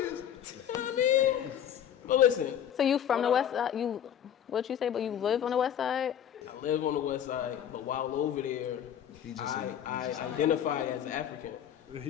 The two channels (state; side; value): quieter; right; 9.7 dB